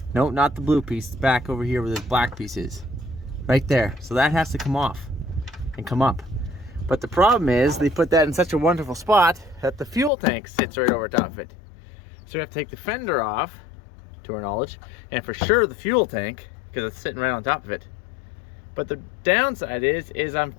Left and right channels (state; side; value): drops out; right; at 10.1 s